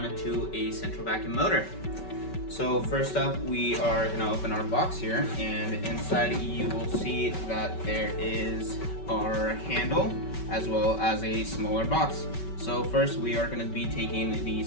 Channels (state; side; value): late; right; 5.3 ms